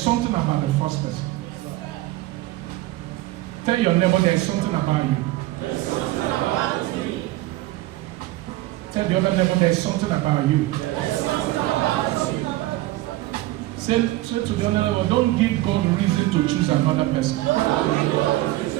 about the first person. Tell your neighbor there's something about you. There's something about me. Tell the other neighbor there's something about you. There's something about you. Say to the other neighbor, don't give God reason to choose another person.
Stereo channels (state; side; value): quieter; left; 17.4 dB